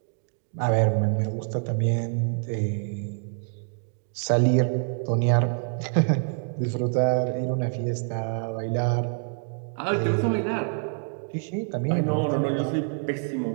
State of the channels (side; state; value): left; silent; 61 dB below the other